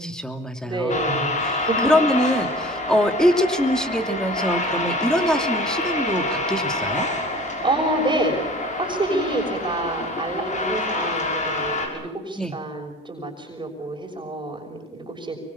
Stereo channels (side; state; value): both; normal; correlation 0.44